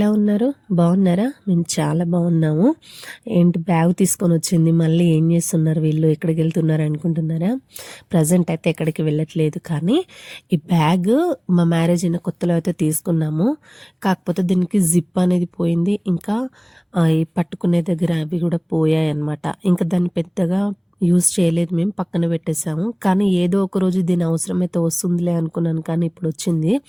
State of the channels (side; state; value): both; identical; correlation 1.00